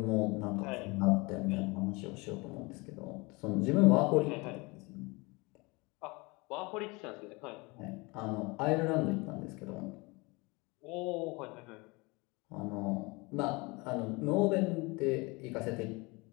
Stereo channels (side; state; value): right; quieter; 26.0 dB